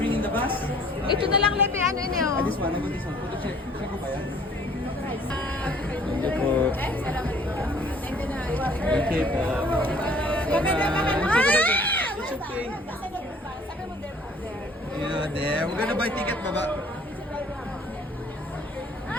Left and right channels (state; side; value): normal; both; correlation 0.55